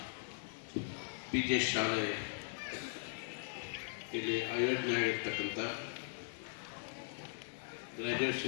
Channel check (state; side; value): silent; right; digital silence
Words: PJ ಶಾಲೆ ಇಲ್ಲಿ ಆಯೋಜನೆಯಾಗಿರ್ತಕ್ಕಂಥ